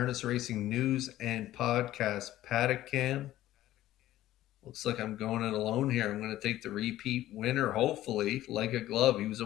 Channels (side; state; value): right; quieter; 14.4 dB